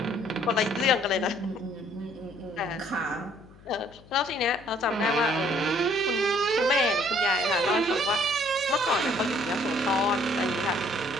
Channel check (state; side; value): noise; left; hum, 23 dB below the sound